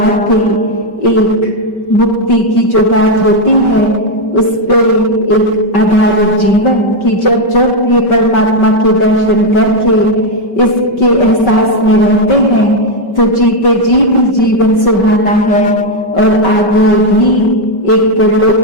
भी एक मुक्ति की जो बात होती है उस पर एक आधारित जीवन की जब जब ये परमात्मा के दर्शन करके इसके एहसास में रहते हैं तो जीते जी भी जीवन सुहाना है। और आगे भी एक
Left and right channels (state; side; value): late; right; 5.2 ms